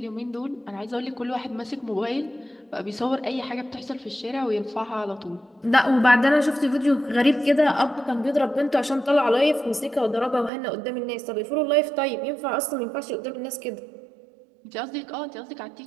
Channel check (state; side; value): drops out; left; at 10.5 s